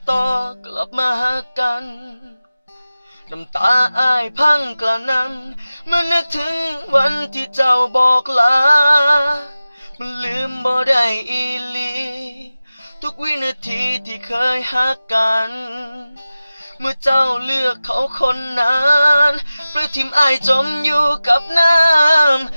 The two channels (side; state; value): both; inverted; correlation -0.96